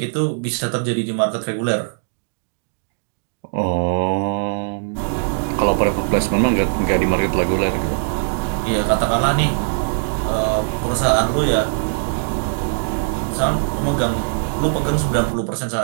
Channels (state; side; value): silent; left; digital silence